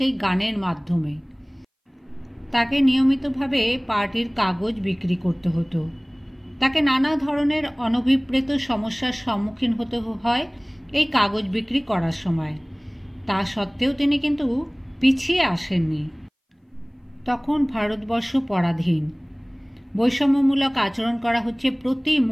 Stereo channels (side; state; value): both; identical; correlation 1.00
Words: গানের মাধ্যমে। তাকে নিয়মিতভাবে পার্টির কাগজ বিক্রি করতে হতো। তাকে নানা ধরনের অনভিপ্রেত সমস্যার সম্মুখীন হতে হয় এই কাগজ বিক্রি করার সময়। তা সত্ত্বেও তিনি কিন্তু পিছিয়ে আসেননি। তখন ভারতবর্ষ পরাধীন, বৈষম্যমূলক আচরণ করা হচ্ছে প্রতি